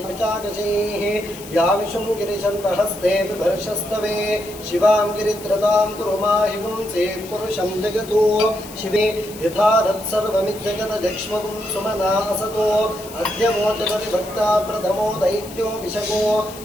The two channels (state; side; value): noise; left; hiss, 17 dB below the sound